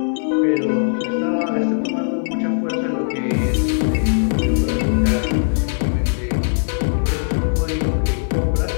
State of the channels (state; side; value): silent; right; 57 dB below the other